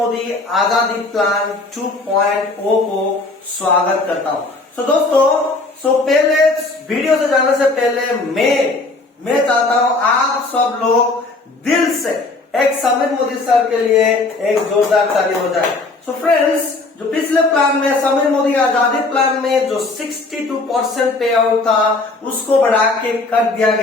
आजादी प्लान 2.0 को स्वागत करता हूं। दोस्तों, पहले वीडियो से जाने से पहले मैं चाहता हूं आप सब लोग दिल से एक समीर मोदी सर के लिए एक जोरदार ताली हो जाए। फ्रेंड्स, जो पिछले प्लान में समीर मोदी आजादी प्लान में जो 62% पे आउट था उसको बढ़ा के कर दिया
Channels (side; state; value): right; quieter; 3.3 dB